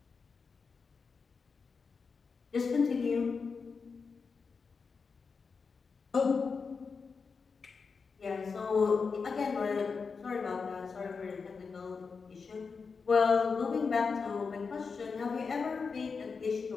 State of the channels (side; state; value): right; quieter; 5.1 dB